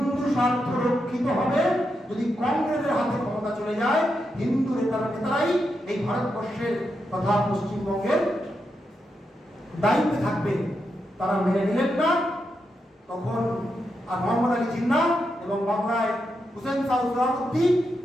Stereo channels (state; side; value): normal; both; correlation 0.85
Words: স্বার্থ রক্ষিত হবে যদি কংগ্রেসের হাতে ক্ষমতা চলে যায়। হিন্দু নেতারাই এই ভারতবর্ষের তথা পশ্চিমবঙ্গের দায়িত্বে থাকবে। তারা মেনে নিলেন না। তখন আর মোহাম্মদ আলী জিন্নাহ এবং বাংলায় হুসেন শাহ সোহরাওয়ার্দী